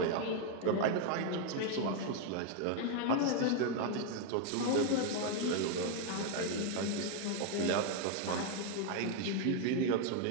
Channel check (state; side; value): different; both; correlation 0.01